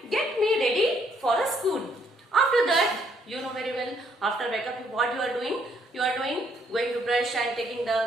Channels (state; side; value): normal; both; correlation 0.69